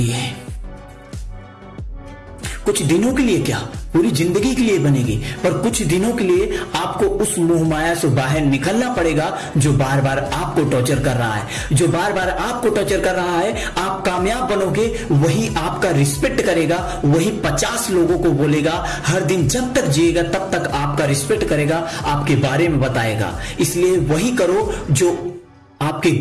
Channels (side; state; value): both; identical; correlation 1.00